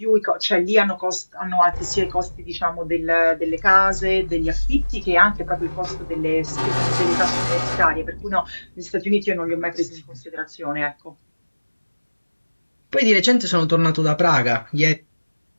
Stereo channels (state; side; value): inverted; both; correlation -1.00